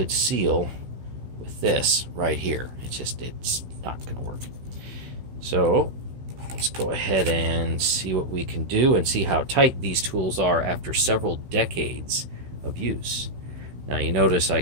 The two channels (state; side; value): late; left; 16 ms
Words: seal with this right here. It's not going to work. So let's go ahead and see what we can do and see how tight these tools are after several decades of use. Now you notice I